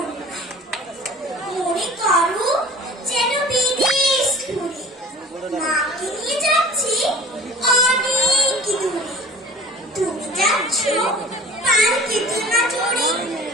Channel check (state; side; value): normal; both; correlation 0.42